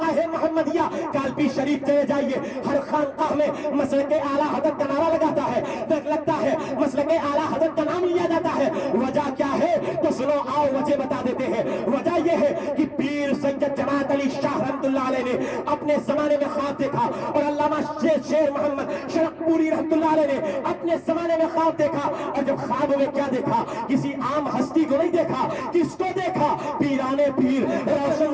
محمدیہ کالپی شریف چلے جائیے، ہر خانقاہ میں مسلک اعلیٰ حضرت کا نعرہ لگاتا ہے، لگتا ہے مسلک اعلیٰ حضرت کا نام لیا جاتا ہے۔ وجہ کیا ہے تو سنو، آؤ وجہ بتا دیتے ہیں۔ وجہ یہ ہے کہ پیر سید جماعت علی شاہ رحمۃ اللہ علیہ نے اپنے زمانے میں خواب دیکھا، اور علامہ شیر محمد شرق پوری رحمۃ اللہ علیہ نے اپنے زمانے میں خواب دیکھا، اور جب خواب میں کیا دیکھا؟ کسی عام ہستی کو نہیں دیکھا، کس کو دیکھا؟ پیرانے پیر، روشن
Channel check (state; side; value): identical; both; correlation 1.00